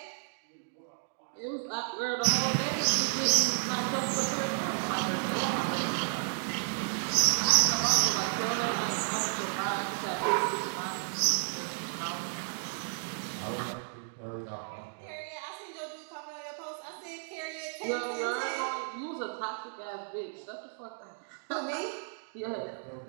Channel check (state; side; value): silent; left; digital silence